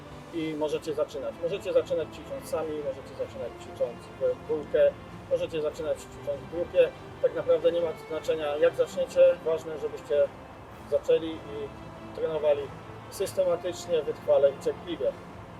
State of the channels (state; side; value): identical; both; correlation 1.00